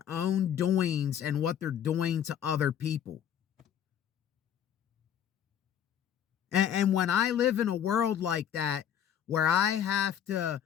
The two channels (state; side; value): quieter; right; 9.5 dB